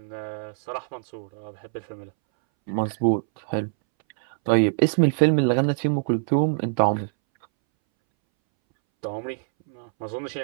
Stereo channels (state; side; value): silent; left; 62 dB below the other